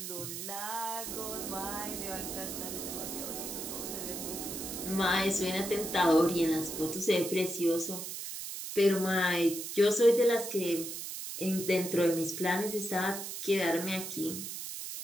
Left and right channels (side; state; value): right; noise; hiss, 7 dB below the sound